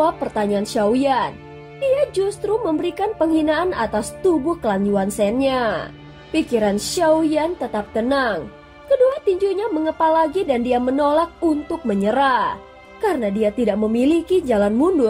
pertanyaan Xiaoyan. Dia justru memberikan penghinaan atas tubuh klan Yuan Shen-nya. Pikiran Xiaoyan tetap tenang. Kedua tinjunya mengepal lagi dan dia menolak untuk menyerah. Karena dia tidak memiliki jalan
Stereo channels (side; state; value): both; identical; correlation 1.00